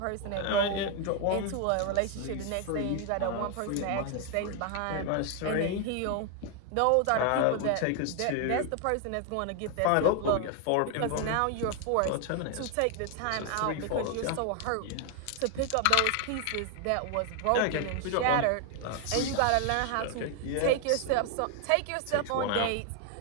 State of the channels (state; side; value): different; both; correlation 0.00